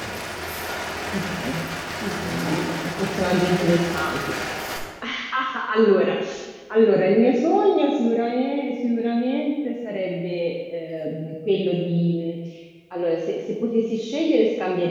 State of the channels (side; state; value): both; identical; correlation 1.00